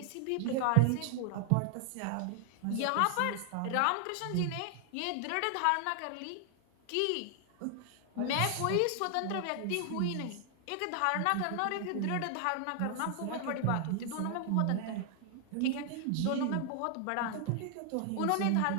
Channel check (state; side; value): different; both; correlation 0.00